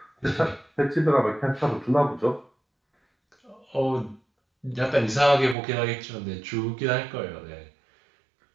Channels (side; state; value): left; drops out; at 5.6 s